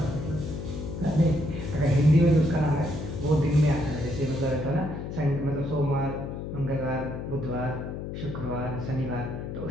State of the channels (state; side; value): noise; left; hum, 6 dB below the sound